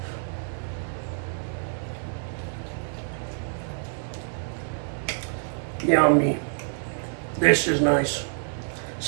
Yummy. This is nice.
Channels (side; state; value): left; silent; digital silence